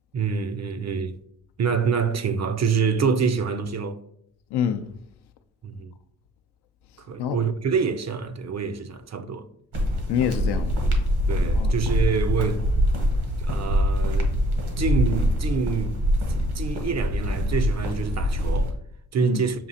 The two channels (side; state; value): both; normal; correlation 0.55